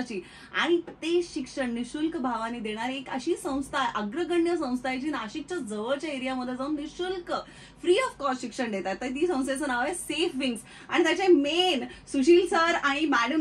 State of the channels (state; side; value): identical; both; correlation 1.00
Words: आणि ते शिक्षण निशुल्क भावाने देणारी एक अशी संस्था, अग्रगण्य संस्था आहे जी नाशिकच्या जवळच्या एरियामध्ये जाऊन निशुल्क फ्री ऑफ कॉस्ट शिक्षण देतात. तर ती संस्थेचं नाव आहे सेफ विंग्स, आणि त्याचे मेन सुशील सर आणि